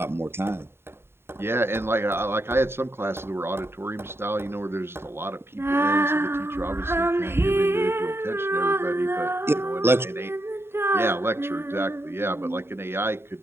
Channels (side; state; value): left; late; 0.11 ms